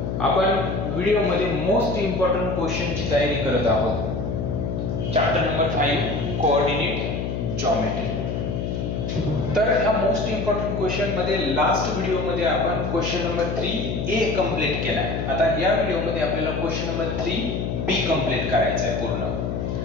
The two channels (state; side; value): noise; left; hum, 2 dB below the sound